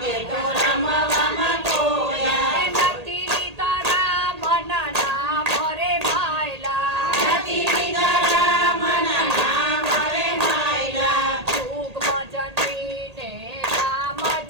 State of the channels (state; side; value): late; left; 1.8 ms